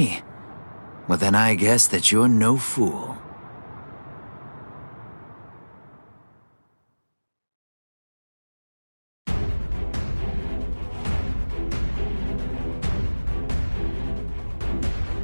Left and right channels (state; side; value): inverted; both; correlation -1.00